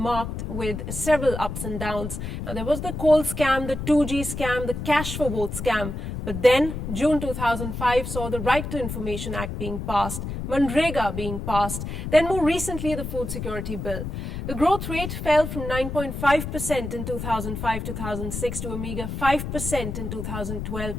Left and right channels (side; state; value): left; noise; rumble, 5 dB below the sound